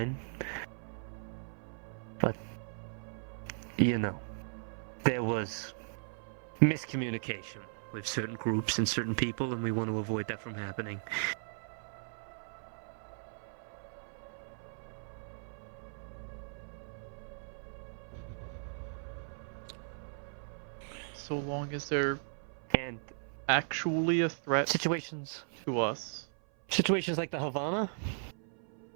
but, you know, there was miscommunication with certain groups and certain people, and we want to avoid that from happening. So long as they're And actually a threat situations to us. Situations like the Havana,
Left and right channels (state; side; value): silent; left; 53 dB below the other